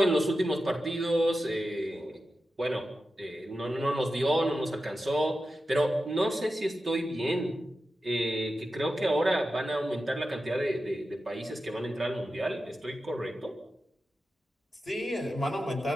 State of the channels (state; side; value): normal; both; correlation 0.91